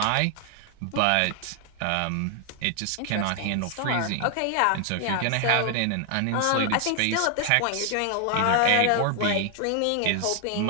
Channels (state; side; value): different; both; correlation 0.00